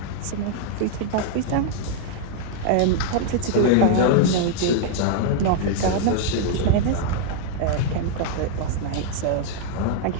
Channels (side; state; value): both; different; correlation -0.01